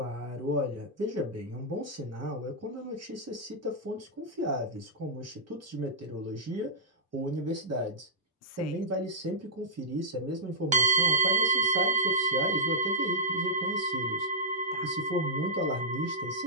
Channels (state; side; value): normal; both; correlation -0.10